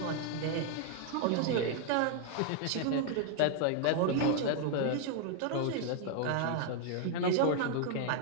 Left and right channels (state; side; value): different; both; correlation 0.00